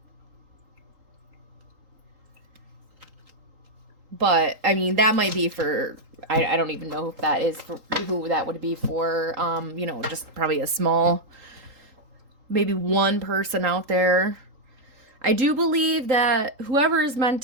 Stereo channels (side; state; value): left; late; 3.8 ms